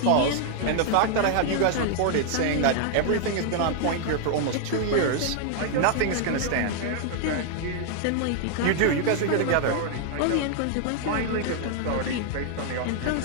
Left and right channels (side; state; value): both; different; correlation 0.00